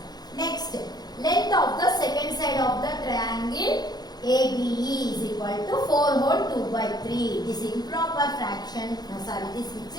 Next, length of the second side of the triangle ABE is equal to 4 whole 2 by 3. This improper fraction, this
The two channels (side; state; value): right; late; 0.19 ms